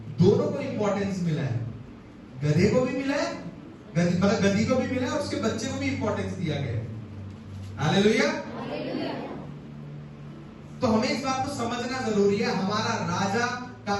दोनों को इंपॉर्टेंस मिला है, गधे को भी मिला है, मतलब गधी को भी मिला और उसके बच्चे को भी इंपॉर्टेंस दिया गया। हालेलुया। तो हमें इस बात को समझना जरूरी है, हमारा राजा का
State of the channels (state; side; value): identical; both; correlation 1.00